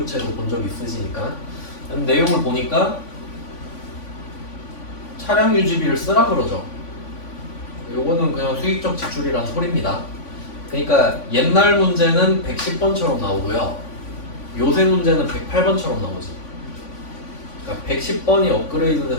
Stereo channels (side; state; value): right; late; 3.5 ms